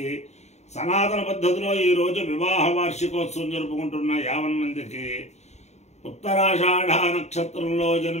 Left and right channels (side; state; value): right; late; 0.32 ms